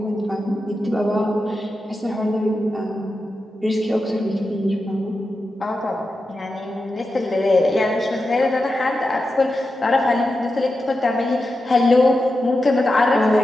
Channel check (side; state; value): both; normal; correlation 0.90